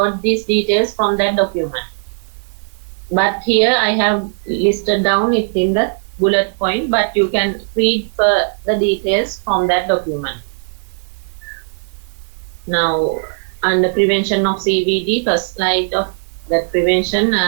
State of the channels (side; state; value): left; silent; 68 dB below the other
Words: these details from that document. But here I have listed down it in the bullet point, but you can read the details from that document. Now, under prevention of CVD, first slide of that prevention,